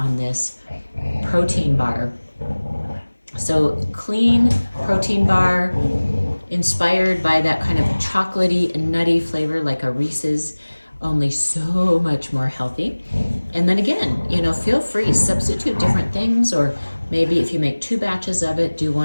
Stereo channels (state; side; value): inverted; both; correlation -1.00